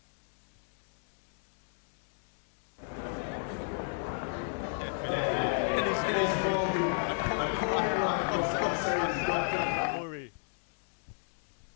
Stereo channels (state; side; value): silent; right; digital silence